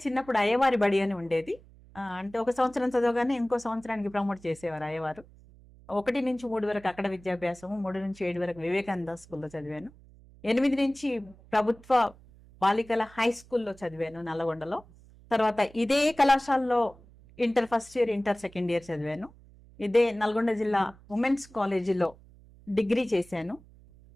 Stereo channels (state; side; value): noise; right; hum, 24 dB below the sound